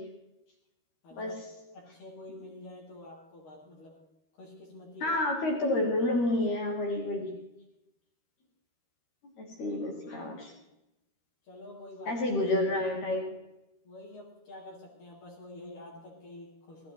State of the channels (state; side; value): late; right; 13 ms